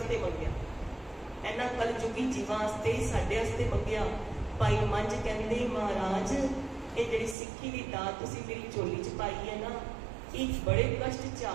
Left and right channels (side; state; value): left; drops out; at 7.4 s